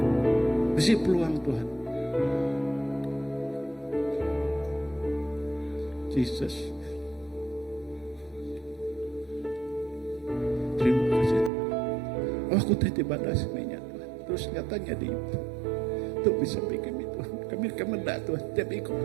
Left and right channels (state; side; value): drops out; left; at 11.5 s